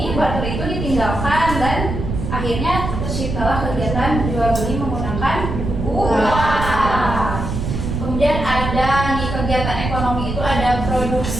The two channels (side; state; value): right; noise; rumble, 4 dB below the sound